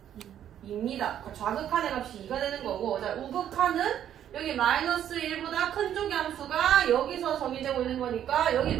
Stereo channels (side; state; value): left; quieter; 10.4 dB